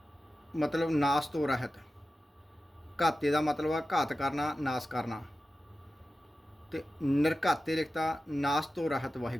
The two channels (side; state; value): both; normal; correlation 0.93